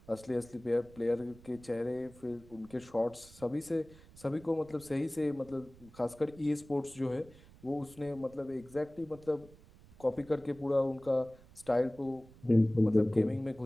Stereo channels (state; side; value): noise; right; rumble, 23 dB below the sound